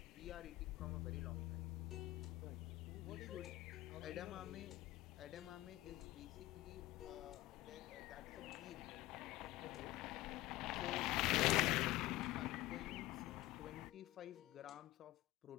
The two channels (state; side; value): quieter; right; 17.6 dB